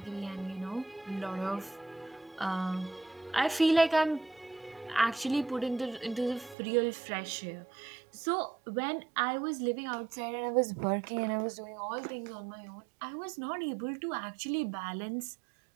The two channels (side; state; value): left; drops out; at 6.6 s